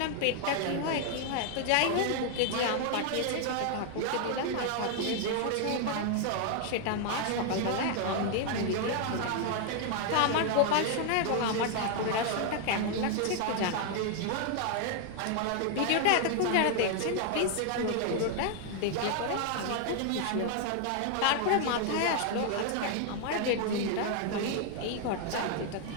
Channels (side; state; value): both; different; correlation 0.00